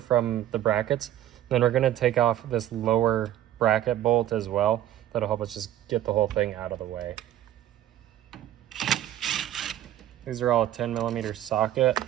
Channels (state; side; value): quieter; left; 12.5 dB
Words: the brackets. Then we're going to take off this lower bracket bolt as well. That'll help us just get the whole thing out of the way. These are all a 10mm socket.